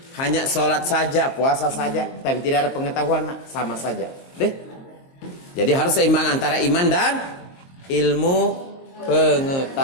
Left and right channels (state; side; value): late; right; 22 ms